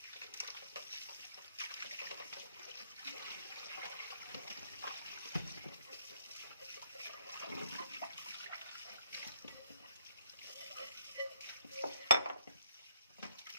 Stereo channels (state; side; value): inverted; both; correlation -0.71